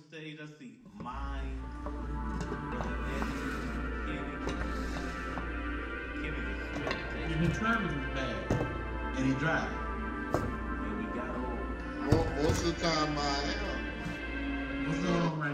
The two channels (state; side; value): identical; both; correlation 1.00